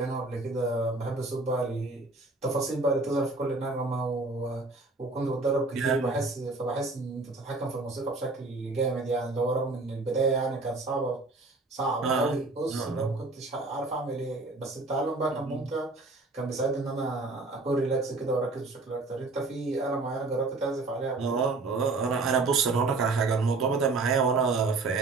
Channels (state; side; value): quieter; left; 3.4 dB